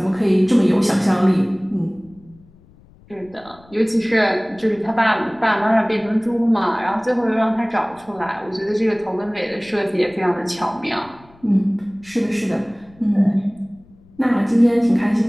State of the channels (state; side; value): noise; left; rumble, 27 dB below the sound